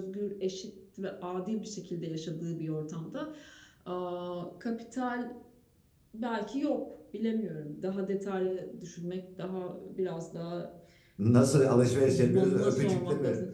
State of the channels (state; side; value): identical; both; correlation 1.00